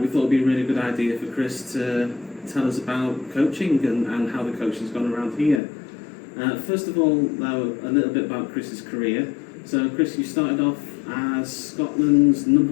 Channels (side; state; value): right; drops out; at 5.6 s